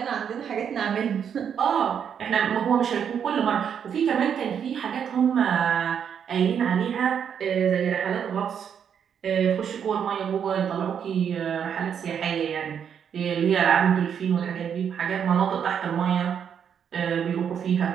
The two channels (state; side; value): quieter; left; 8.0 dB